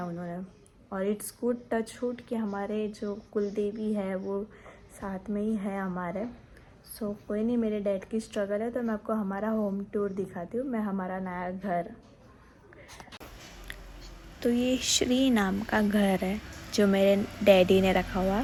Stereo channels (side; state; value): both; identical; correlation 1.00